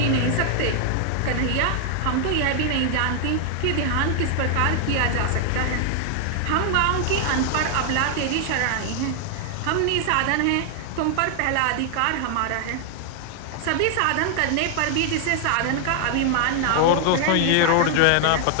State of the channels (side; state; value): both; different; correlation 0.00